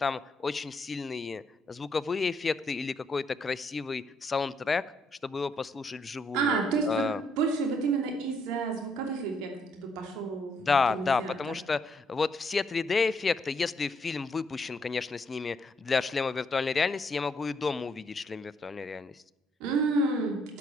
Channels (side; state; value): both; normal; correlation 0.72